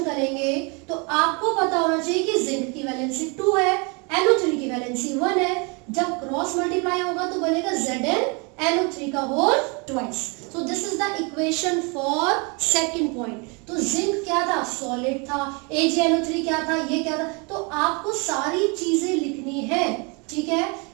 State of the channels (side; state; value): left; quieter; 31.7 dB